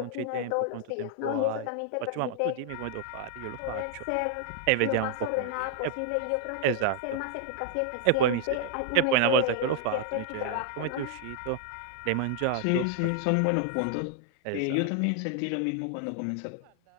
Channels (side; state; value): both; different; correlation 0.00